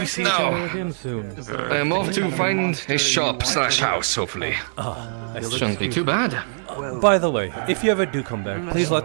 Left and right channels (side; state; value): left; silent; digital silence